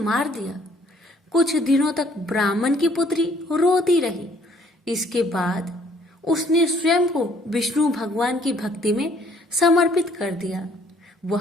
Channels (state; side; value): normal; both; correlation 0.62